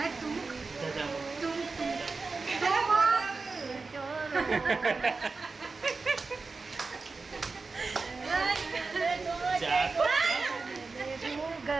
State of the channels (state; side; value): quieter; left; 4.1 dB